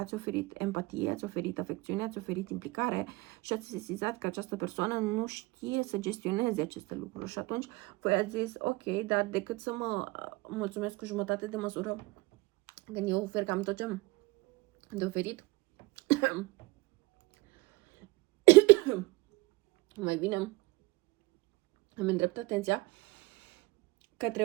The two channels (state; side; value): quieter; left; 22.0 dB